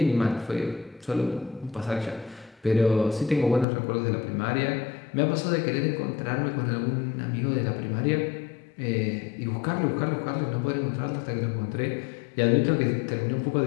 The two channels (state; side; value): drops out; right; at 3.7 s